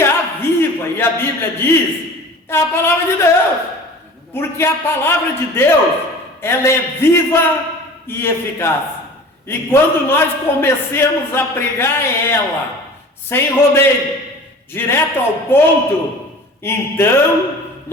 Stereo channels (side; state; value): both; normal; correlation 0.41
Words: aviva, e a Bíblia diz, é a palavra de Deus. Porque a palavra de Deus, ela é viva e eficaz. E quando nós comecemos a pregar ela, sem rodeio, direto ao ponto, então